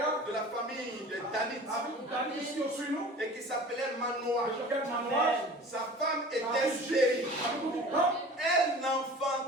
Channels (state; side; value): normal; both; correlation 0.41